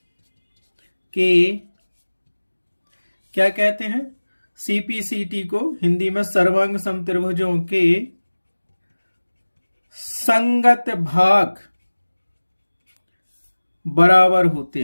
के, क्या कहते हैं, CPCT को हिंदी में सर्वांग सम त्रिभुजों के संगत भाग बराबर होते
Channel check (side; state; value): both; inverted; correlation -1.00